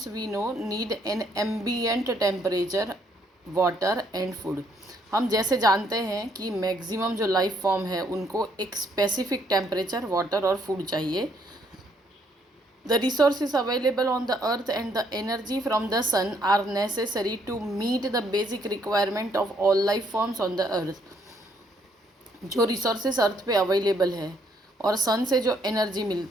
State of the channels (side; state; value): both; normal; correlation 0.69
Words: we know need an ambient temperature, water and food. हम जैसे जानते हैं कि मैक्सिमम जो लाइफ फॉर्म है उनको एक स्पेसिफिक टेम्परेचर, वाटर और फूड चाहिए. The resources available on the earth and the energy from the sun are necessary to meet the basic requirement of all life forms on the earth. जो resources अर्थ पे available है और सन से जो energy